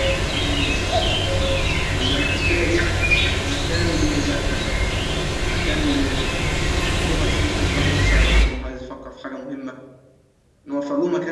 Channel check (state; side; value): identical; both; correlation 1.00